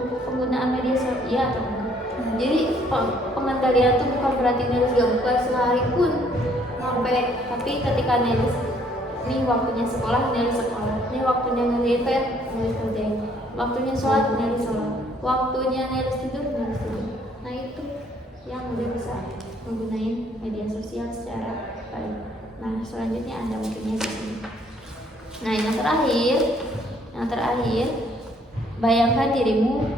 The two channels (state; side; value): normal; both; correlation 0.64